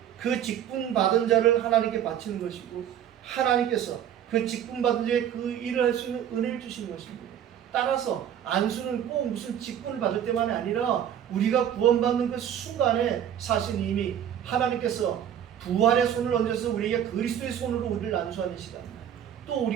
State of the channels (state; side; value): quieter; left; 9.9 dB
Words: 그 직분 받은 자를 하나님께 바치는 것이고, 하나님께서 그 직분 받은 자에 그 일을 할 수 있는 은혜를 주시는 것입니다. 따라서 안수는 꼭 무슨 직분을 받을 때만이 아니라 우리가 구원받는 그 순간에 사실 이미 하나님께서 부활의 손을 얹어서 우리에게 그리스도의 손으로 우리를 안수하는 시간, 또